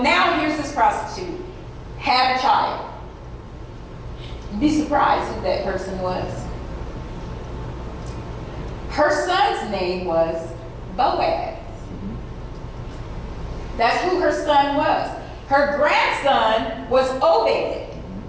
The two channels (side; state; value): both; identical; correlation 1.00